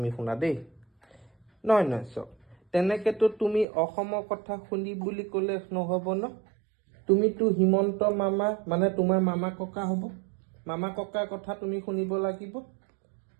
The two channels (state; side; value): drops out; left; at 3.7 s